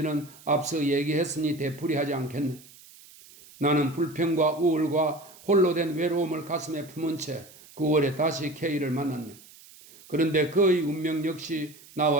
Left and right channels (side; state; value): right; noise; hiss, 22 dB below the sound